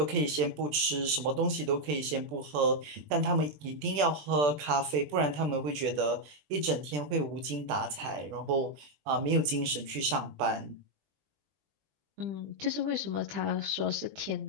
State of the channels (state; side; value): late; left; 20 ms